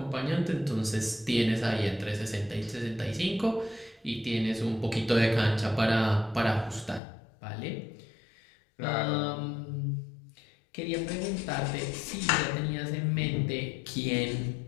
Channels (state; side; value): drops out; right; at 7.0 s